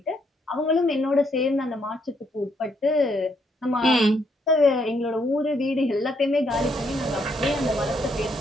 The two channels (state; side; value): normal; both; correlation 0.73